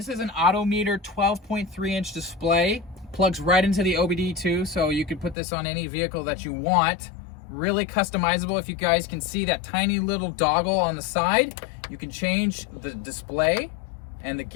is an Autometer 12.3 inch display. Plugs right into the OBD2, so you could put this on any vehicle that you want. Really customizable. If you guys can see that tiny little doggle on the side, you can change the display and the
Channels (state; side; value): drops out; right; at 5.4 s